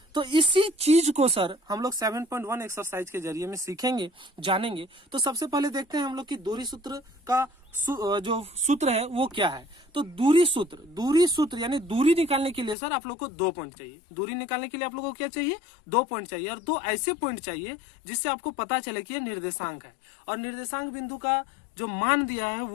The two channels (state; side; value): drops out; right; at 12.8 s